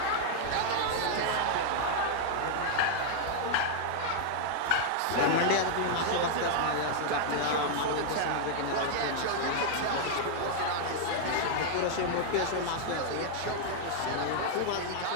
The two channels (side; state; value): both; different; correlation -0.01